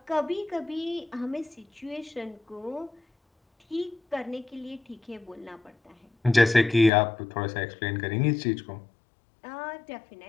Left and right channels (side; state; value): right; drops out; at 6.9 s